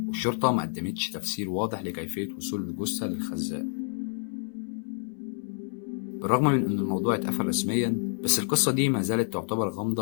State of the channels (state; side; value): silent; right; 59 dB below the other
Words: والشرطة ما قدمتش تفسير واضح لكيفية وصول الجثة للخزان. بالرغم من أن الموضوع اتقفل رسميا، بس القصة دي ما زالت تعتبر